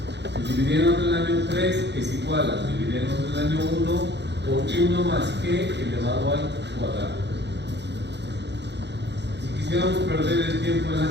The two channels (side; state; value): left; late; 0.50 ms